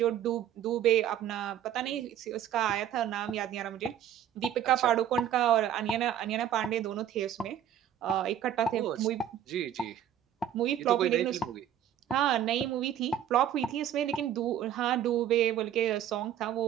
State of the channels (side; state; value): left; quieter; 10.3 dB